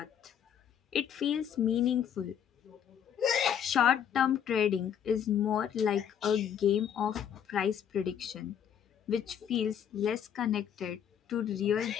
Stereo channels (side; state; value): right; quieter; 8.8 dB